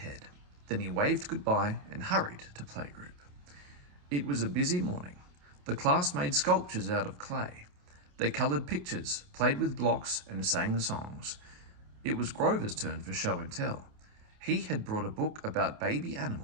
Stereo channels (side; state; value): left; late; 28 ms